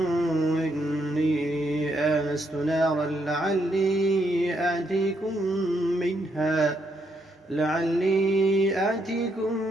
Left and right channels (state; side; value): normal; both; correlation 0.76